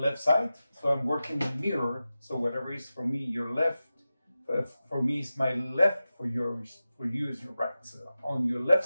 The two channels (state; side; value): inverted; both; correlation -0.94